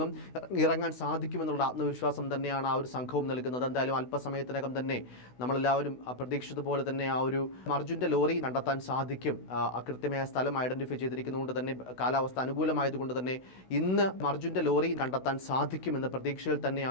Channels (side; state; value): right; late; 16 ms